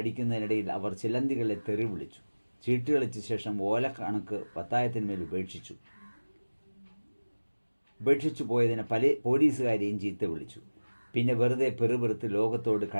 അവർ ചിലന്തികളെ തെറി വിളിച്ചു. ചീട്ട് കളിച്ച ശേഷം ഓലക്കണക്ക് പത്തായത്തിന്മേൽ ഉപേക്ഷിച്ചു പോയതിന് പല പോലീസുകാരെയും ചീത്ത വിളിച്ചു. പിന്നെ വെറുതെ പെറുപെറുത്ത് ലോകത്തോട്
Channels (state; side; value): inverted; both; correlation -1.00